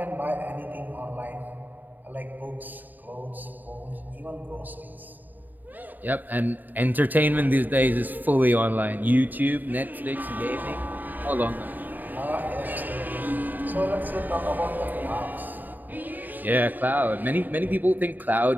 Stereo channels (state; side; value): late; left; 0.087 ms